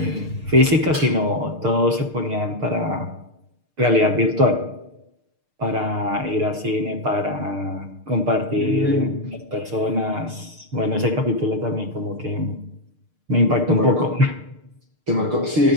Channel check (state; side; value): late; left; 6.6 ms